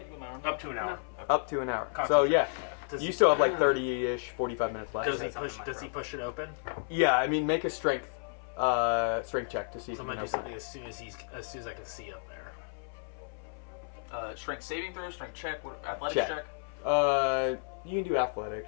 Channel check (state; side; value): silent; right; 56 dB below the other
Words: you an hour. Up to an hour. up to an hour. So yeah, Does you he- still have like 30-ish, 45 minutes left. Does he push it open? Yeah, I mean, make a strength check to see if So you I'm can gonna do open something it. as soon as I can see up there. Strength saving throw, strength check, athletics Check. check. You can do